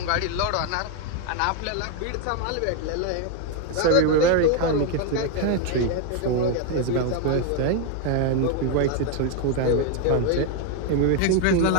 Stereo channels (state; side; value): different; both; correlation 0.01